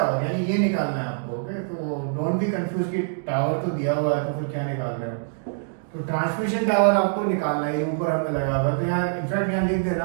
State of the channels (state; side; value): silent; left; digital silence